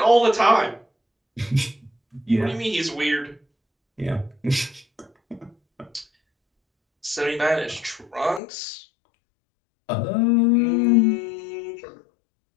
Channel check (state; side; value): drops out; right; at 8.4 s